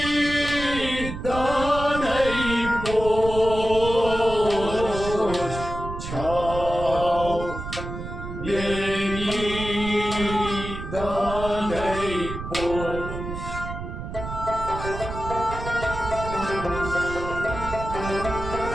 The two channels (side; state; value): right; noise; rumble, 8 dB below the sound